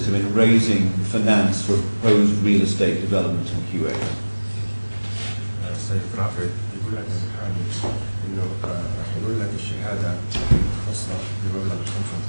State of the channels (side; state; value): both; inverted; correlation -1.00